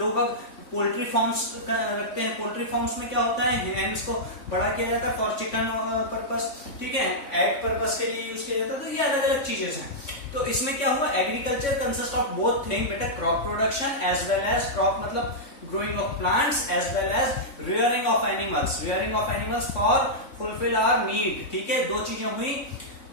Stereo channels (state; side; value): late; right; 3.6 ms